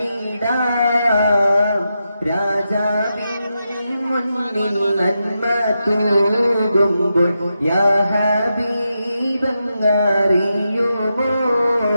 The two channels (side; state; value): both; inverted; correlation -0.87